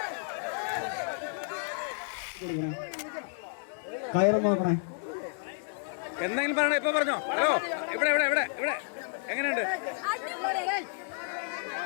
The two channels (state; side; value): silent; right; digital silence